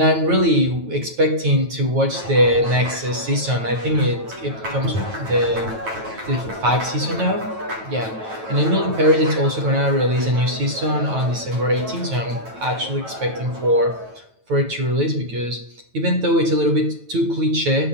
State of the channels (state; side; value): late; left; 9.1 ms